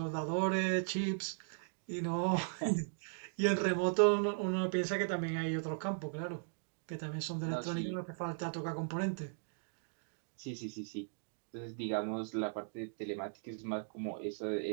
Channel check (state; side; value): silent; left; digital silence